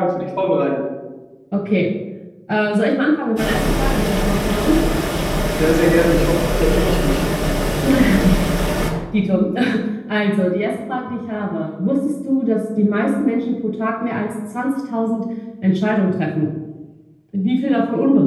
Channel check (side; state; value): both; identical; correlation 1.00